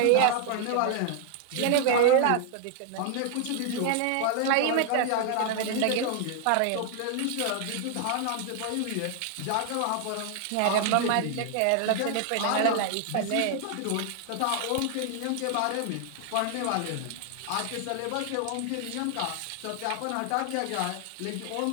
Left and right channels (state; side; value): different; both; correlation 0.00